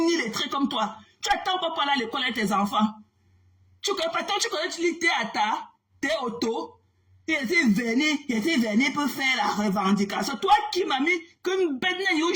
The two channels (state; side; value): identical; both; correlation 1.00